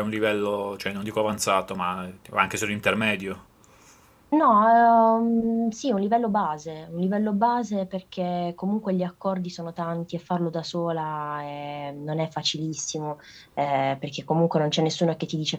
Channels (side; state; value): both; identical; correlation 1.00